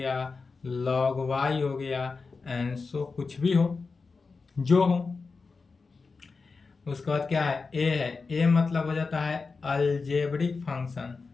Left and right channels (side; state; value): right; quieter; 4.4 dB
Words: लॉग वाई हो गया, एंसो कुछ भी हो, जो हो। उसके बाद क्या है, ए है। ए मतलब हो जाता है algebraic function.